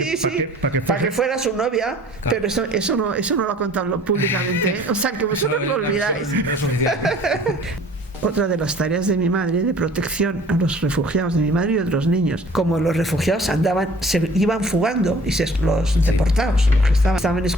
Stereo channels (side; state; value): both; normal; correlation 0.50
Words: para que fuera su novia, claro. Pero eso no lo ha contado públicamente. O sea, que vosotros lo olvidáis. Otra de las tareas de mi madre, de protección a los refugiados, de mi madre y otros niños, como los refugiados se iban fugando, y los deportados, los que estaban